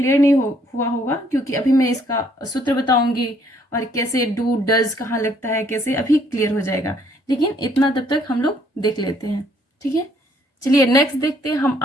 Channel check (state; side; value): normal; both; correlation 0.65